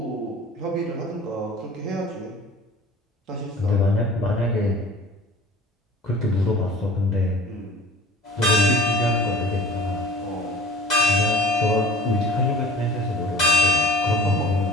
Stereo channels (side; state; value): both; normal; correlation 0.44